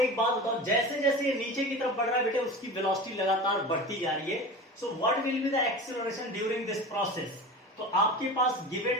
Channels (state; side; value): normal; both; correlation 0.31